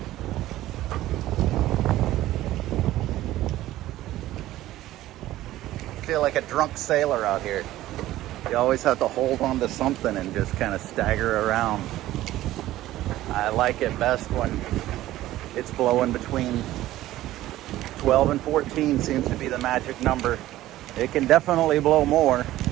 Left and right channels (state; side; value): quieter; left; 15.1 dB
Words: Feel like a drunk sailor out here. You always have to hold on to something and just kind of stagger around. I like it best when it's blowing between 12 and 14 seems to be the magic number. It can definitely blow more,